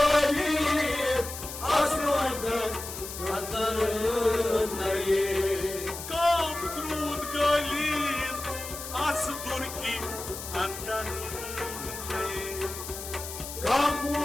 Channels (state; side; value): noise; left; hiss, 9 dB below the sound